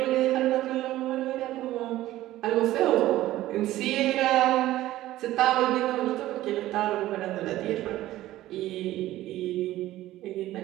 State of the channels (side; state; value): left; quieter; 15.2 dB